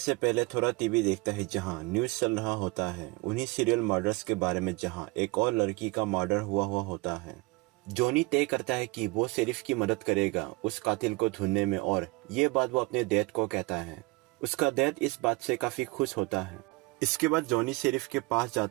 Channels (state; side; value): quieter; left; 25.0 dB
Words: पहले थोड़ा टीवी देखता है जहां न्यूज चल रहा होता है उन्हीं सीरियल मर्डर्स के बारे में जहां एक और लड़की का मर्डर हुआ होता है। जॉनी तय करता है कि वो शेरिफ की मदद करेगा उस कातिल को ढूंढने में और ये बात वो अपने डैड को कहता है। उसका डैड इस बात से काफी खुश होता है। इसके बाद जॉनी शेरिफ के पास